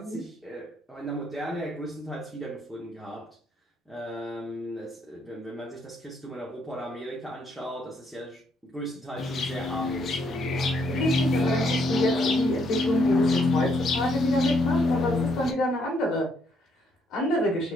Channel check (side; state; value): both; normal; correlation 0.71